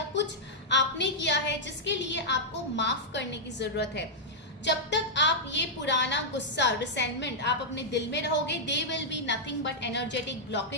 कुछ आपने किया है जिसके लिए आपको माफ करने की जरूरत है. जब तक आप ये पुराना गुस्सा, रिसेंटमेंट आप अपने दिल में रहोगे, they will be nothing but energetic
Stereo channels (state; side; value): normal; both; correlation -0.07